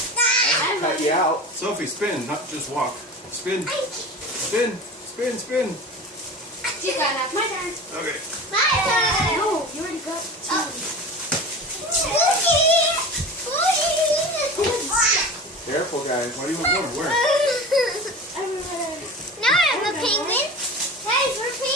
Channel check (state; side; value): normal; both; correlation 0.33